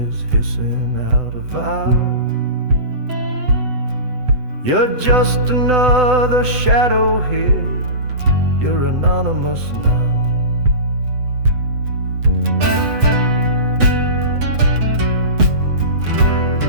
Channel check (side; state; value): left; late; 8.0 ms